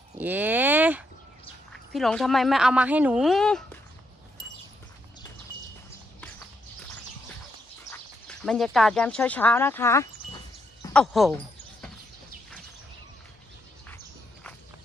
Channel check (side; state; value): both; normal; correlation 0.78